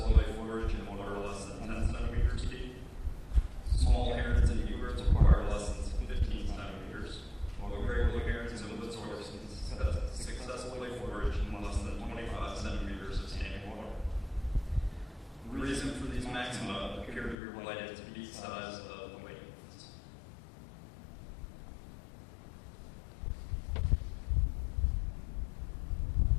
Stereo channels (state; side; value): drops out; right; at 17.4 s